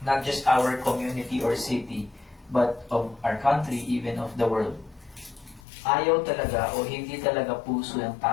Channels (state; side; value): drops out; right; at 5.6 s